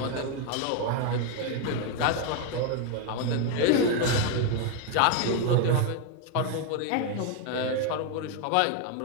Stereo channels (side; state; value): both; different; correlation 0.01